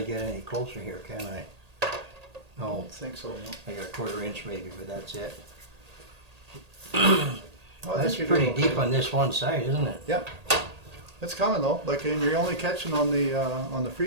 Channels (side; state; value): left; late; 1.8 ms